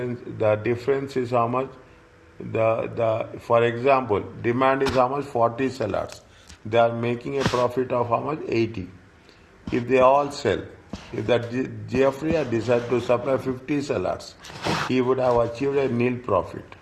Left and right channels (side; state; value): both; identical; correlation 1.00